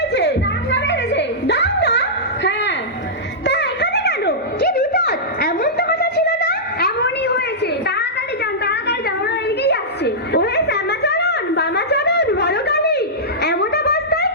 দাঙ্গা বেড়েছে। দাঙ্গা? হ্যাঁ, তা এখানে কেন? কি বিপদ? এমন তো কথা ছিল না। এমনই হয়েছে। তাড়াতাড়ি যান, তাড়াতাড়ি যান, ওরা এদিকেই আসছে। ওহে শ্যামাচরণ, বামাচরণ, বড়কালী, এমন অবস্থায়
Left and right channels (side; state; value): both; normal; correlation -0.13